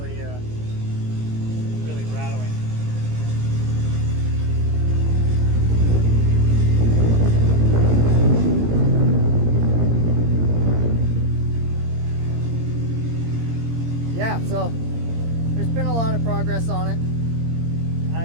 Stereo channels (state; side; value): late; left; 17 ms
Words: rattling. Yeah, so there's been a lot of progress on it.